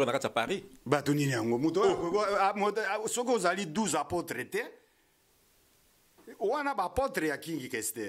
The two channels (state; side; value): identical; both; correlation 1.00